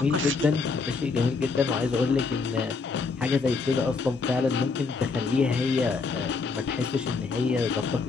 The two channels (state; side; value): quieter; right; 4.5 dB